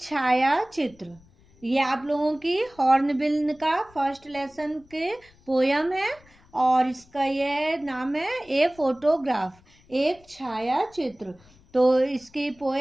चित्र. ये आप लोगों की हॉर्नबिल का फर्स्ट लेसन के पोयम है और इसका ये नाम है ए फोटोग्राफ, एक छाया चित्र. तो इसकी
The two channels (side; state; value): left; noise; rumble, 28 dB below the sound